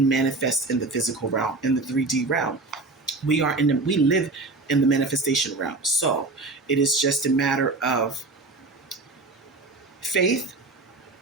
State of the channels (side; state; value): left; quieter; 3.4 dB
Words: manifest in the physical realm, in the 3D realm. We live in the manifestation realm. So it is just a matter of faith,